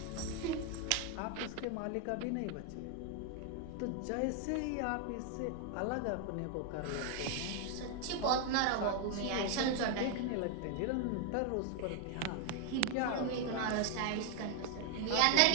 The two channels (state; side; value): different; both; correlation 0.00